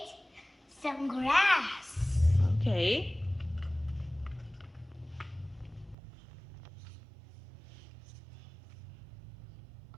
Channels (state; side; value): drops out; left; at 6.0 s